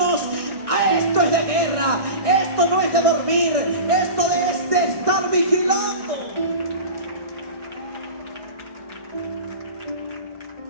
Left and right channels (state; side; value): late; left; 1.6 ms